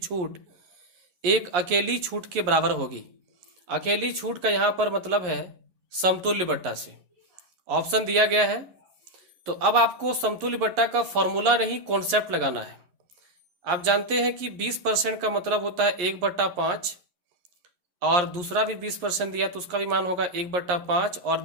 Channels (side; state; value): left; late; 11 ms